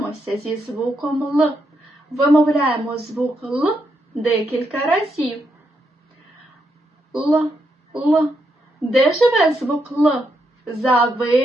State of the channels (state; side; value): normal; both; correlation 0.80